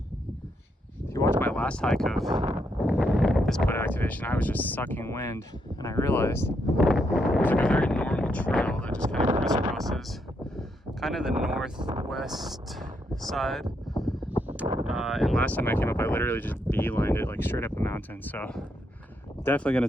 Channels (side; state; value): both; normal; correlation 0.78